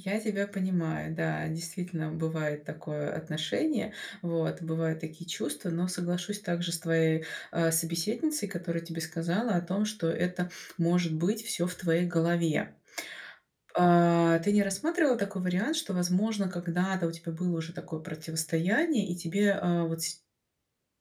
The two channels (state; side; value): identical; both; correlation 1.00